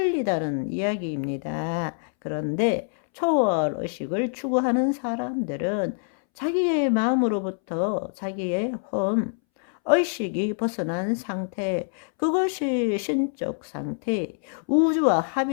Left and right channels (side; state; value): right; silent; 61 dB below the other